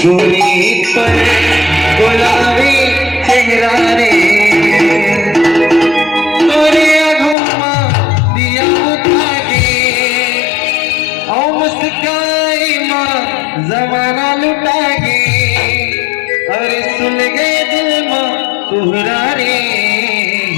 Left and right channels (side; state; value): right; drops out; at 7.4 s